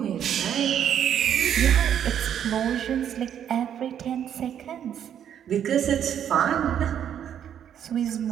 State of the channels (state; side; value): quieter; left; 9.4 dB